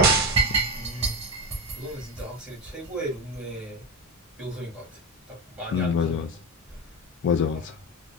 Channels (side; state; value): both; normal; correlation 0.18